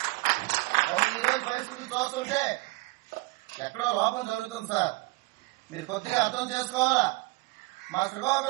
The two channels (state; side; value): quieter; left; 23.5 dB